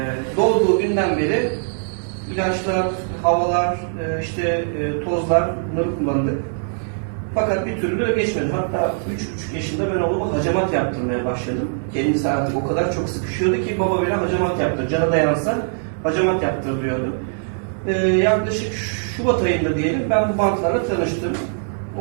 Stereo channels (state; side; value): silent; left; digital silence